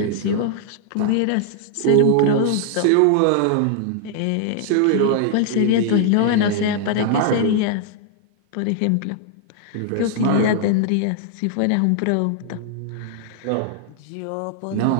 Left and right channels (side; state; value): both; different; correlation -0.01